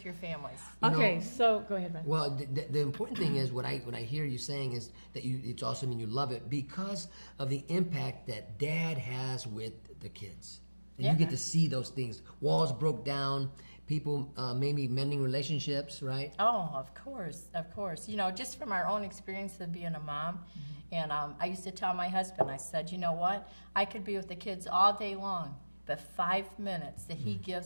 your families. You know- Okay, so go ahead, Beth. Well, the important thing is what I hear you saying is that it's awesome and you love it because of the impact that Dad has with the kids. And Yeah. you get to see those things. Walls broke down, people maybe mending relationships, right? Oh, of course, of course. You know, just from our own experience of being a mom, and I used to tell my husband, I said, you know what? I could be with the kids all day long, but 5 minutes that he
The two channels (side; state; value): both; inverted; correlation -1.00